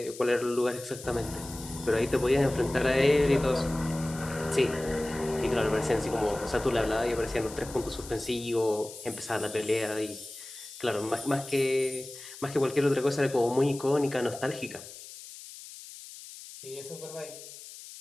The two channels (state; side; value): noise; left; hiss, 15 dB below the sound